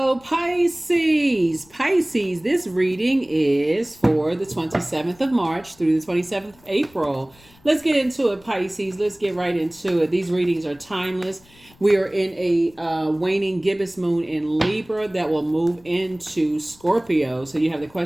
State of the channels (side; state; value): left; noise; rumble, 28 dB below the sound